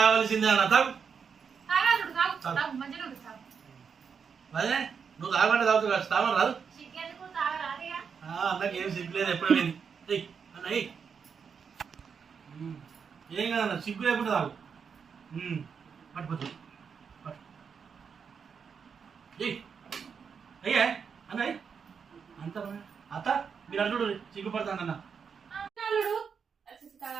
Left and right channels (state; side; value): quieter; left; 6.4 dB